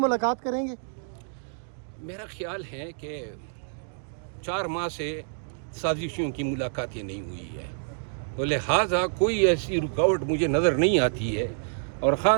करेंगे? मेरा ख्याल है कि 4 माह से साजिशों की मुलाकातें नहीं हुई है, तो लिहाजा कोई ऐसी रुकावट मुझे नज़र नहीं आती है। और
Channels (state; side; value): silent; left; digital silence